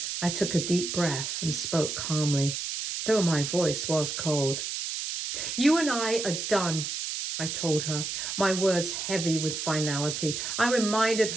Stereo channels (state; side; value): noise; right; hiss, 4 dB below the sound